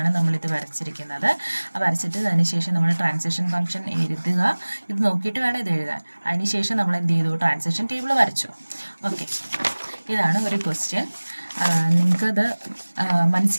നമ്മളിത് വരച്ചിരിക്കുന്നത്. വരച്ചിട്ട് അതിനുശേഷം നമ്മൾ ട്രാൻസിഷൻ ഫംഗ്ഷൻ എഴുതുക. ഇത് നോക്കിയിട്ട് വേണം ഇത് എഴുതാൻ. അതിനുശേഷം നമ്മൾ എന്ത് ചെയ്തു? ട്രാൻസിഷൻ ടേബിൾ വരച്ചു. ഓക്കെ, ഇതാണ് ഒരു ക്വസ്റ്റ്യൻ. നിങ്ങൾക്കത്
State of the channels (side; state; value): both; inverted; correlation -1.00